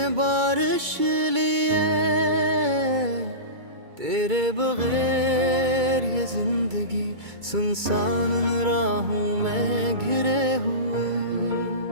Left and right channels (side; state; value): left; late; 2.2 ms